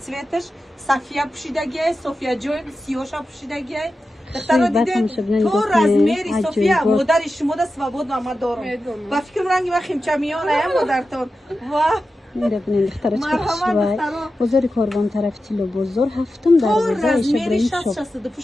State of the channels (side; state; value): both; normal; correlation 0.92